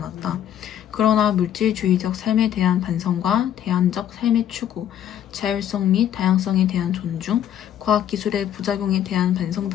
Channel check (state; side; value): quieter; right; 10.4 dB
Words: 그러나 물질주의적 삶에 대한 반성과 대안적 삶의 추구, 자율성 및 다양성에 대한 존중, 과학기술의 부작용에 대한 반성